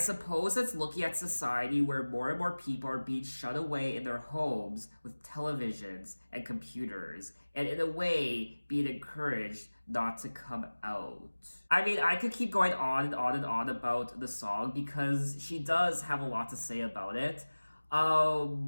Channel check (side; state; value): both; inverted; correlation -1.00